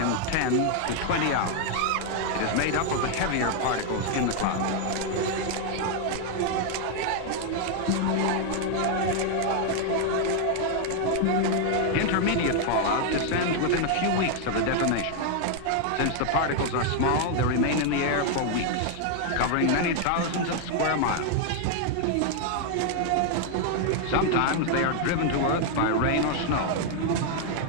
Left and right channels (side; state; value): both; different; correlation 0.00